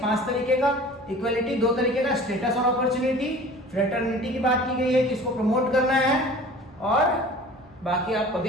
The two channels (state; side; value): normal; both; correlation 0.43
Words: 5 तरीके का। इक्वलिटी 2 तरीके का, स्टेटस और अपॉर्चुनिटी। फ्रेटर्निटी की बात की गई है, किसको प्रमोट करना है, और बाकी आप